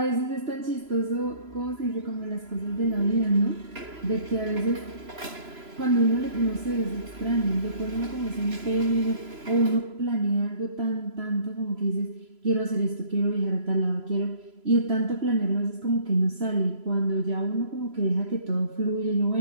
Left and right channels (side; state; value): left; late; 3.0 ms